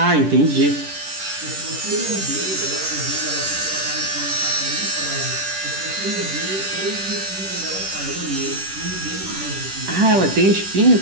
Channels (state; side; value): late; left; 10 ms